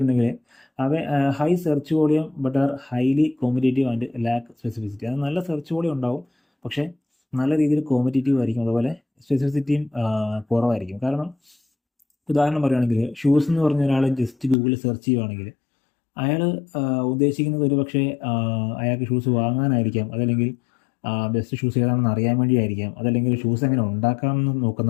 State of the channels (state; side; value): drops out; right; at 14.6 s